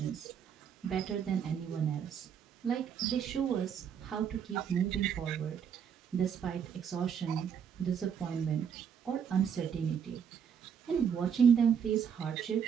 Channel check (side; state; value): left; quieter; 7.7 dB